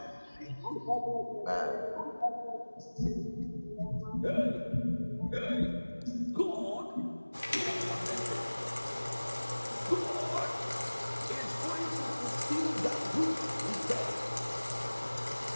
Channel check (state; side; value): inverted; both; correlation -1.00